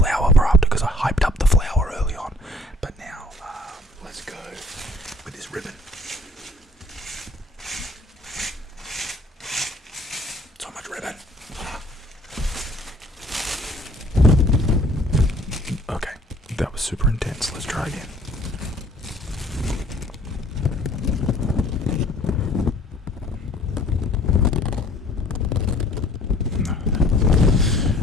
for after because I hyped up the flower early on. But now, let's go with this ribbon. So much ribbon. Okay, that was super intense. Let's try again.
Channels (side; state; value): both; normal; correlation 0.55